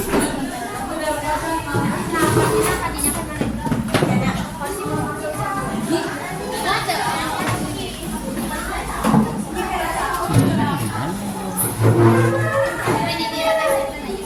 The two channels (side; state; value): both; identical; correlation 1.00